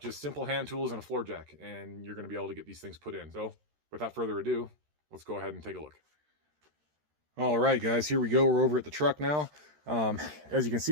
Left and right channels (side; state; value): left; late; 13 ms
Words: simple hand tools and a floor jack, and you're going to be able to get these things put in. So without further ado, let's go ahead and take a look. All right, guys, here we go. We're over at the truck now. As you can